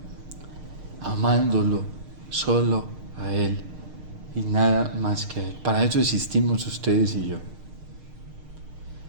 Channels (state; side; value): late; left; 6.5 ms